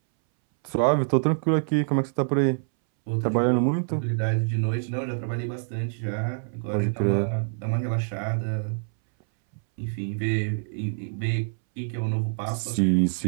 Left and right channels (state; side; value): silent; left; 61 dB below the other